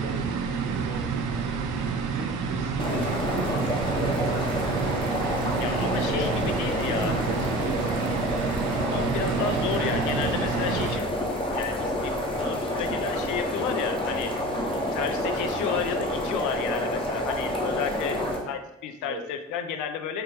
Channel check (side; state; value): both; normal; correlation 0.37